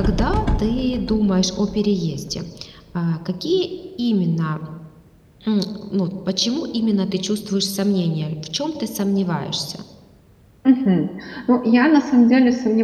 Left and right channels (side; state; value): both; identical; correlation 1.00